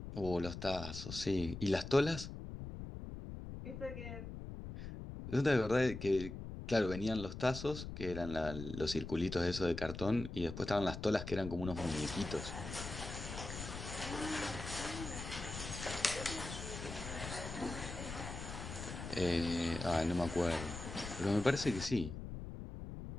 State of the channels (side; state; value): left; noise; rumble, 8 dB below the sound